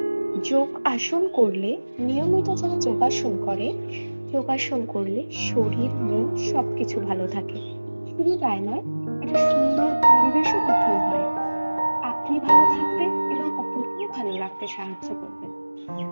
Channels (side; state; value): both; inverted; correlation -1.00